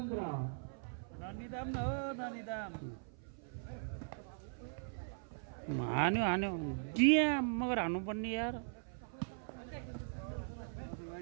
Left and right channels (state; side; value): silent; left; 51 dB below the other